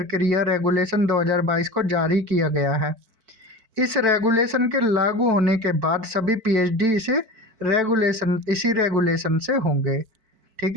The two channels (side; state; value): left; late; 4.5 ms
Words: रेगुलेशन 2022 को जारी किया गया है। इस रेगुलेशन के लागू होने के बाद सभी पीएचडी इसी रेगुलेशन से होंगे,